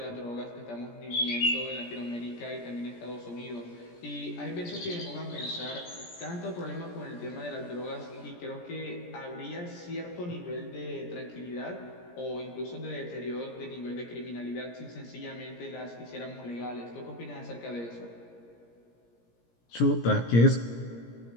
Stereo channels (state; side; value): late; right; 17 ms